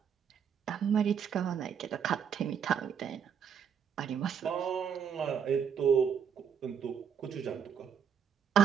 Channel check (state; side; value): quieter; left; 7.6 dB